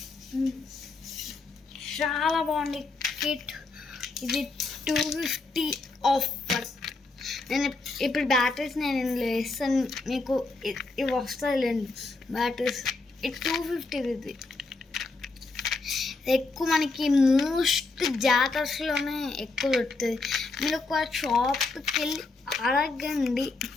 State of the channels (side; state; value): right; quieter; 3.6 dB